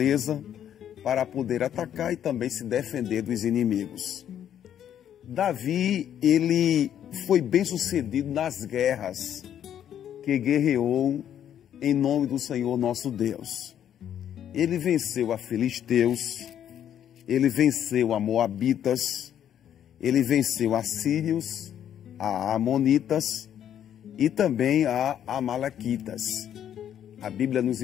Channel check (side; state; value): right; quieter; 10.0 dB